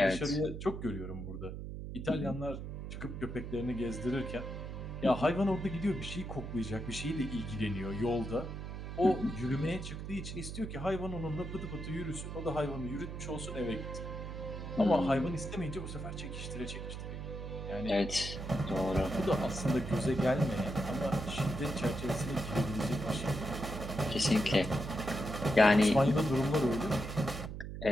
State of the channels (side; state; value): right; noise; hum, 7 dB below the sound